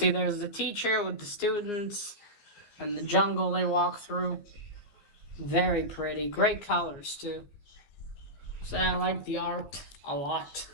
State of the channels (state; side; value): late; right; 15 ms